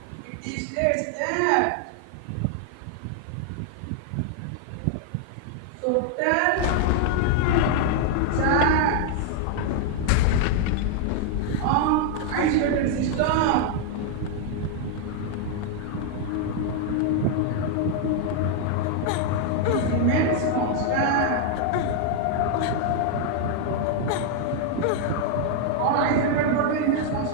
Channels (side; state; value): both; different; correlation 0.00